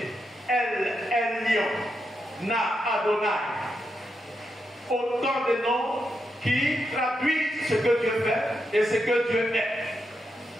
El Elion, Na Adonai. Autant de noms qui traduisent ce que Dieu fait et ce que Dieu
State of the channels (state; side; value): normal; both; correlation 0.84